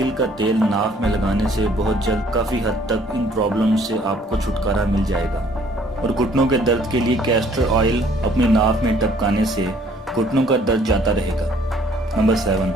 का तेल नाफ में लगाने से बहुत जल्द काफ़ी हद तक इन प्रॉब्लम से आपको छुटकारा मिल जाएगा। और घुटनों के दर्द के लिए कैस्टर ऑयल अपनी नाफ में टपकाने से घुटनों का दर्द जाता रहेगा। नंबर 7,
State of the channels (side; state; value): both; normal; correlation 0.60